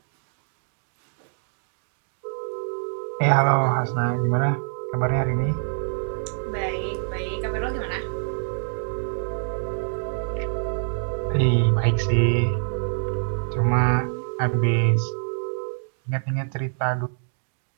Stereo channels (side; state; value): left; silent; digital silence